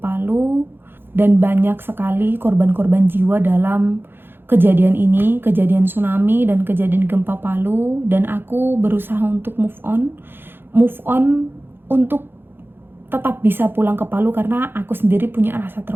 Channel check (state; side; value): late; left; 0.10 ms